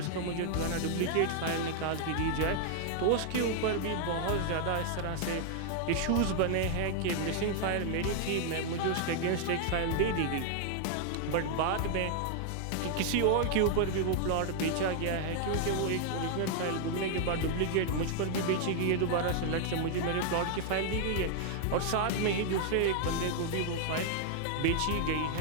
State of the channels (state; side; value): different; both; correlation 0.00